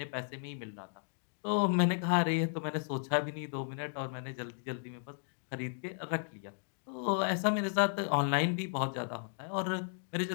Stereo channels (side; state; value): right; silent; digital silence